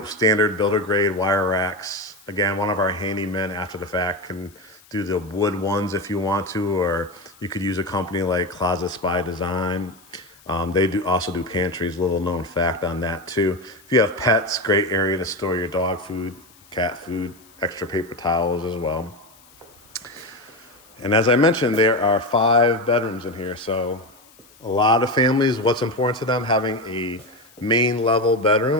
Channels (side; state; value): left; noise; hiss, 27 dB below the sound